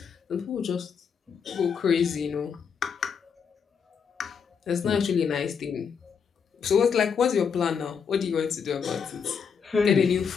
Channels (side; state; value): right; quieter; 6.6 dB